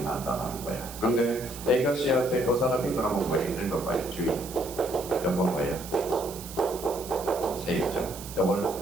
놨다는 거예요. 근데 A가 C한테 그 사람이 그러면 뭐예요? 있는 거 봐요. 주인. 요거 뭐예요? 세입자. 요걸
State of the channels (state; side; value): noise; right; hiss, 13 dB below the sound